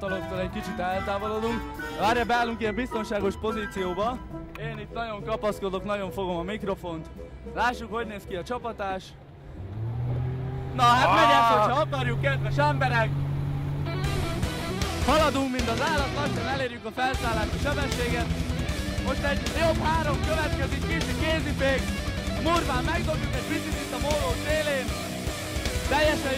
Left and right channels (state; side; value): identical; both; correlation 1.00